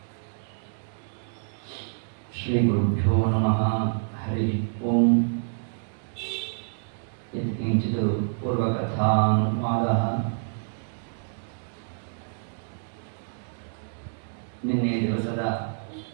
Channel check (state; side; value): silent; left; digital silence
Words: श्री गुरुभ्यो नमः। हरि ओम। यत्किंचित् पूर्वकथानुवादः। ನಿನ್ನೆ ದಿವಸದ